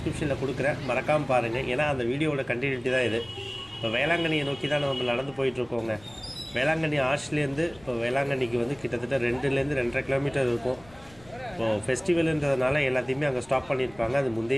கொடுக்குறேன், மறக்காமல் பாருங்கள். ஏன்னா அந்த வீடியோவோட கண்டினியூட்டி தான் இது. இப்போ வேளாங்கண்ணியை நோக்கி தான் நம்ம நடந்து போயிட்டுருக்கோங்க. வேளாங்கண்ணி ஆர்ச்லேருந்து இப்போ வேளாங்கண்ணிக்கு வந்து கிட்டத்தட்ட 2லேருந்து 2.5 கிலோமீட்டர் இருக்கும். இப்போது ஃபெஸ்டிவலுன்றதுனால எல்லாத்தையுமே அங்கே ஸ்டாப் பண்ணியிருப்பாங்க. அது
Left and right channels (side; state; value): left; noise; rumble, 24 dB below the sound